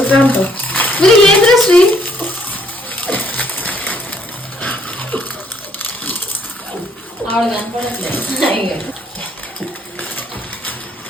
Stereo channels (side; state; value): both; normal; correlation 0.66